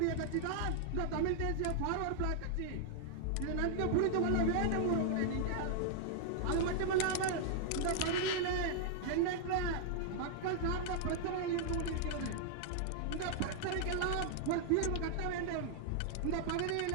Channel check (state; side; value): different; both; correlation -0.01